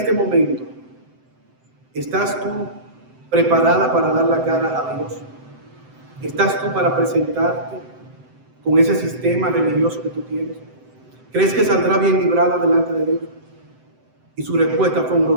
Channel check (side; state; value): left; late; 7.8 ms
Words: momento, ¿estás tú preparada para dar la cara a Dios? ¿Estás tú para presentarte con ese sistema religioso que tú tienes? ¿Crees que saldrá bien librada delante de Dios? Y su respuesta fue un